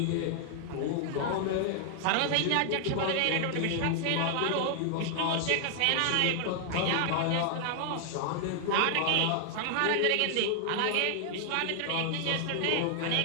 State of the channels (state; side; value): different; both; correlation 0.00